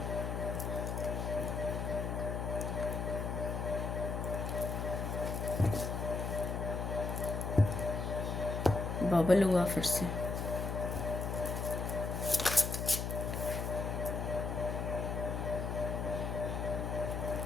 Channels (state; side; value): noise; left; hum, 2 dB below the sound